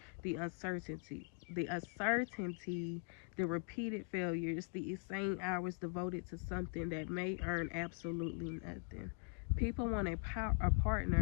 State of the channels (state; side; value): quieter; right; 37.9 dB